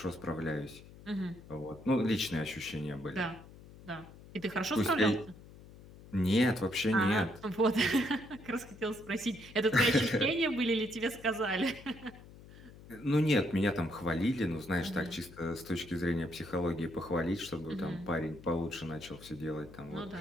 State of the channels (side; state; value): left; noise; hum, 19 dB below the sound